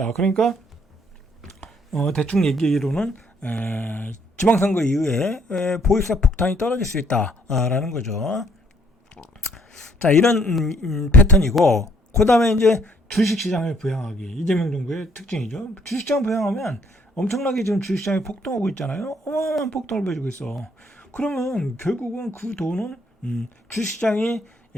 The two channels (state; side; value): normal; both; correlation 0.65